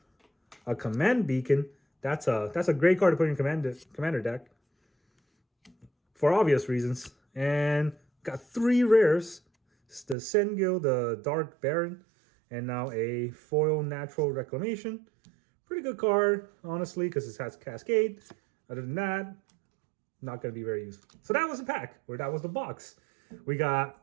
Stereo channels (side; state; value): left; drops out; at 10.2 s